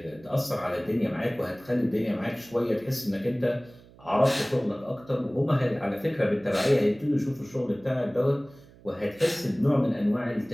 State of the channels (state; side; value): noise; right; hum, 24 dB below the sound